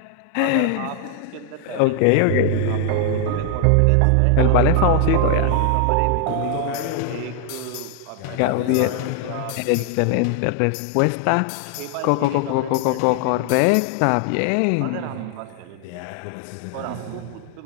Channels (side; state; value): both; different; correlation 0.00